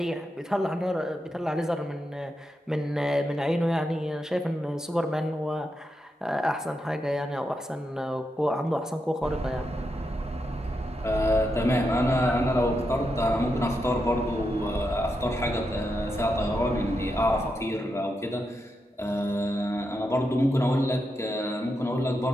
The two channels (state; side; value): normal; both; correlation 0.85